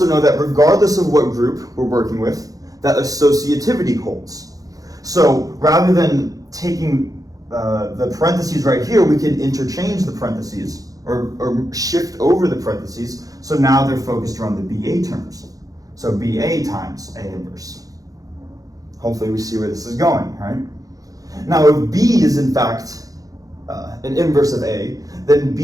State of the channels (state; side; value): late; left; 0.17 ms